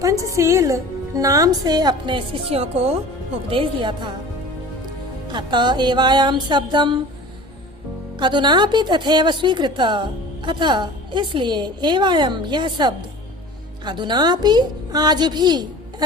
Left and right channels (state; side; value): normal; both; correlation 0.40